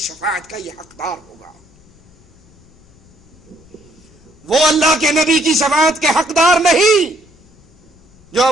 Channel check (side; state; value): left; noise; rumble, 29 dB below the sound